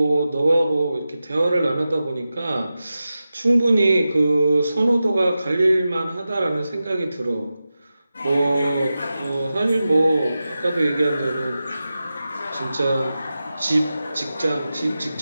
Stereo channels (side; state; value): both; inverted; correlation -0.93